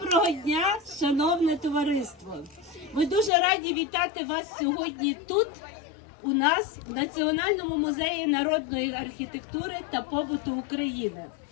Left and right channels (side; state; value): right; drops out; at 3.3 s